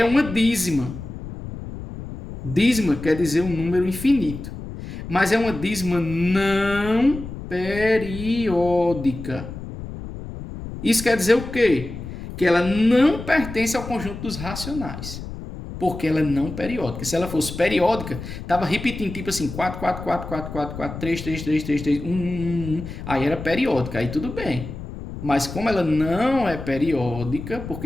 uma dízima. Dízima quer dizer um número infinito. Mas é uma dízima não periódica. Isso quer dizer o quê? Que ela não pertence ao conjunto dos racionais. Porque ela é não periódica. Se ela fosse periódica, estava repetindo, tipo assim, 4, 4, 4, 4, 4, 4, 3, 3, 3, 3, 3, 1, 1, 1. Aí era periódica, aí tudo bem. Mas como ela não é periódica,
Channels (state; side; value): noise; left; rumble, 10 dB below the sound